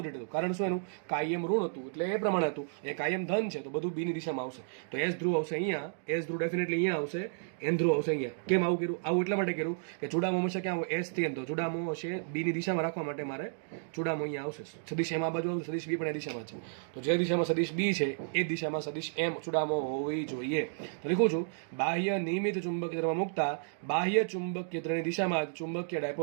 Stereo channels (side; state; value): left; silent; digital silence